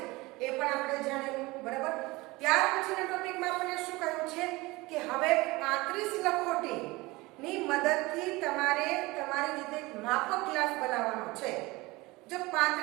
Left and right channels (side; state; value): left; quieter; 22.1 dB